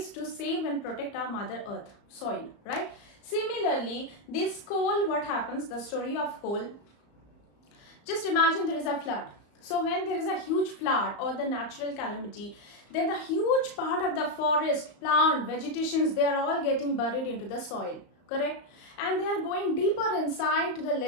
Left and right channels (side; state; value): right; late; 34 ms